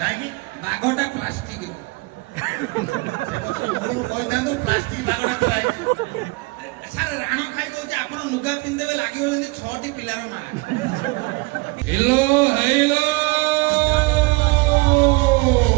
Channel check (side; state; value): left; quieter; 26.4 dB